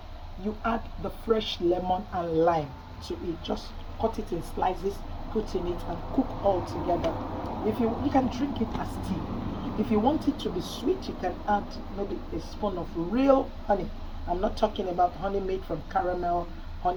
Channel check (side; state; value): both; identical; correlation 1.00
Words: you add the fresh lemon and lime to it. Just cut it in slices, put in it, and cook all together. If you can drink it as tea. If you want it to be sweet, you can add maybe a spoon of real honey. I'm not talking about honey made from caramel,